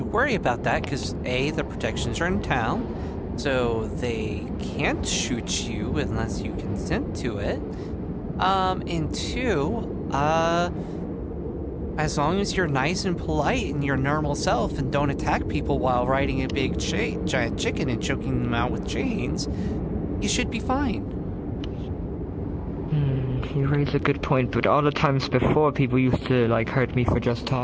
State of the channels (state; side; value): identical; both; correlation 1.00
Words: worry about that because A, the protections are in town, so they can't shoot you unless you consent to it. And two, as long as you're nice and polite and your normal self and don't attack people while riding a big giant chicken and choking them out with chains, you should be fine. You raise a good point, but all the times before people used to like hurt me for just